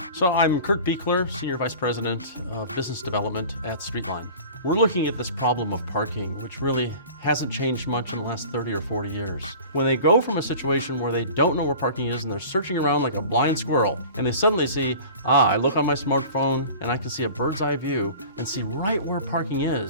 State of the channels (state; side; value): inverted; both; correlation -0.41